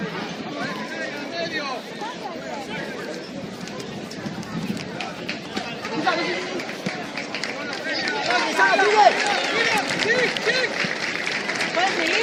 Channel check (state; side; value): identical; both; correlation 1.00